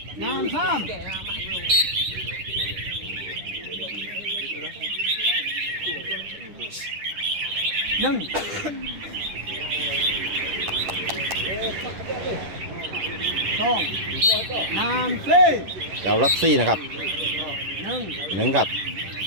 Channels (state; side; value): late; left; 10 ms